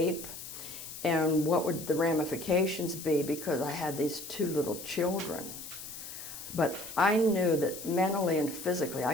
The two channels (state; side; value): noise; left; hiss, 11 dB below the sound